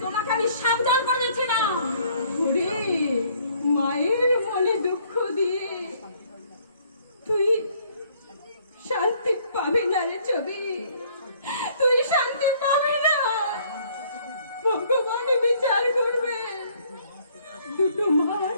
তোমাকে আমি সাবধান করে দিচ্ছি না। ওরে মায়ের মনে দুঃখ দিয়ে তুই শান্তি পাবি না রে ছবি, তুই শান্তি পাবি না। ভগবান বিচার করবে। দুটো মার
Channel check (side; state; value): both; inverted; correlation -0.62